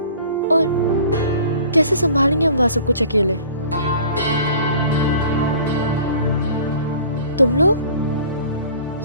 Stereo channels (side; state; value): both; inverted; correlation -0.47